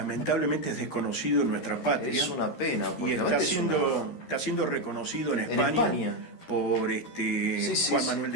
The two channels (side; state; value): right; late; 13 ms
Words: es desconocido en nuestra patria. Es una pena, porque está siendo reconocido en España por Juan Manuel